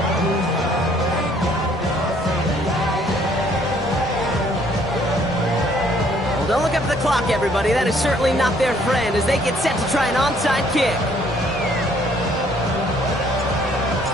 Don't look up at the clock, everybody. That is certainly not their friend as they get set to try an onside kick.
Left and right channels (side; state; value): both; normal; correlation 0.63